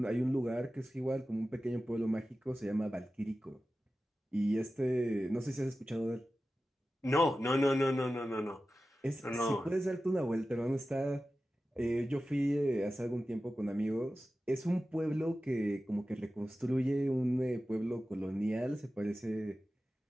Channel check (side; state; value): both; normal; correlation 0.94